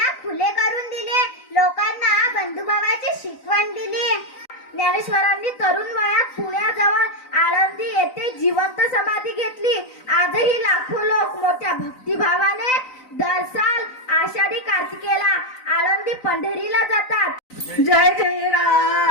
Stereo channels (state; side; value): late; right; 3.9 ms